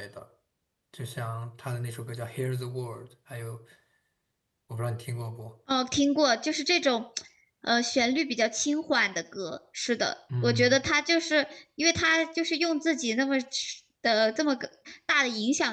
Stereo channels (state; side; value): identical; both; correlation 1.00